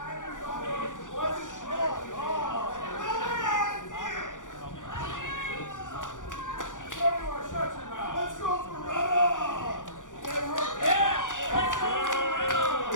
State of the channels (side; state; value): right; late; 0.87 ms